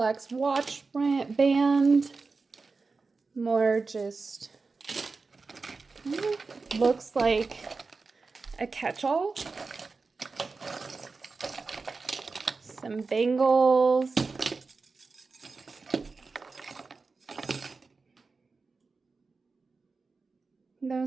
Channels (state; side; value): quieter; left; 4.2 dB